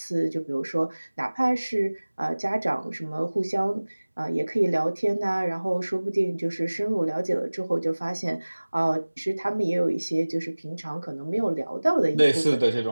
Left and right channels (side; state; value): both; inverted; correlation -1.00